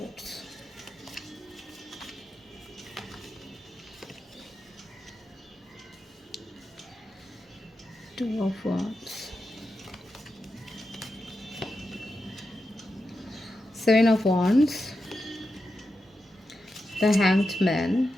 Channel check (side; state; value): both; normal; correlation 0.89